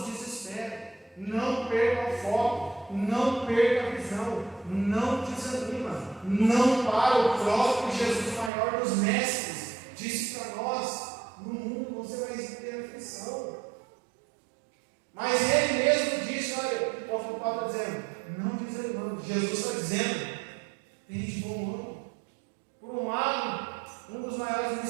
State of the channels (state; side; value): drops out; left; at 8.5 s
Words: desespere, não perca o foco, não perca a visão, não desanima, não para. O próprio Jesus, maior dos mestres, disse para nós: no mundo você vai ter aflição. Mas Ele mesmo disse: olha, o apóstolo Paulo está dizendo, não desanimando. Jesus está dizendo: tem de bom ânimo. Por um lado, um dos maiores